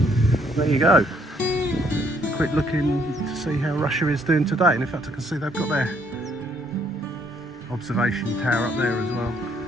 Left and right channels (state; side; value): normal; both; correlation 0.68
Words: There you go. Quick looking to see how Russia is doing today, and in fact I can see they've got their observation tower up there as well.